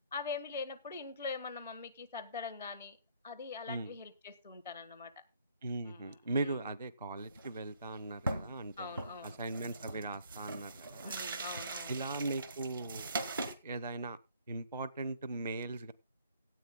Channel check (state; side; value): inverted; both; correlation -0.62